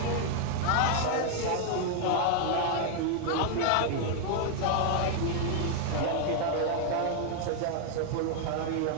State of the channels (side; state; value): both; different; correlation 0.00